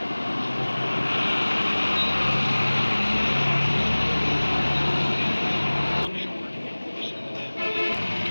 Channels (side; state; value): both; inverted; correlation -1.00